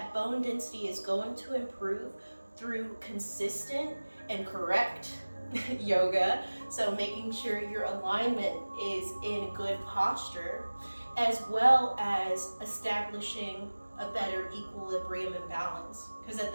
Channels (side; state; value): both; inverted; correlation -1.00